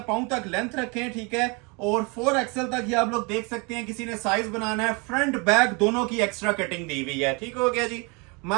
पाँव तक लेंथ रखें, ठीक है। और 4XL तक ही आप लोग देख सकते हैं, किसी ने साइज बनाना है। फ्रंट बैक दोनों की एक्स्ट्रा कटिंग दी हुई है, ठीक हो गया जी।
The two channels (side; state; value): left; quieter; 30.0 dB